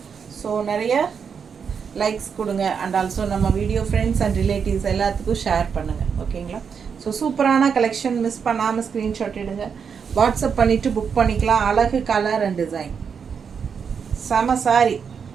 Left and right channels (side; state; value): left; quieter; 6.5 dB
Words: ஸோ நிறைய லைக்ஸ் கொடுங்க. அண்ட் ஆல்சோ நம்ம வீடியோ ஃப்ரெண்ட்ஸ் அண்ட் ரிலேட்டிவ்ஸ் எல்லாத்துக்கும் ஷேர் பண்ணுங்கள் ஓகேங்களா. ஸோ சூப்பரான கலெக்ஷன். மிஸ் பண்ணாமல் ஸ்க்ரீன்ஷாட் எடுங்க. வாட்ஸ்அப் பண்ணிவிட்டு புக் பண்ணிக்கலாம். அழகு கலர் அண்ட் டிசைன் செம சாரி.